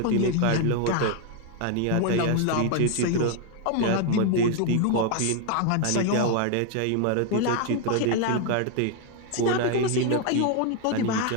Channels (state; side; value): different; both; correlation 0.01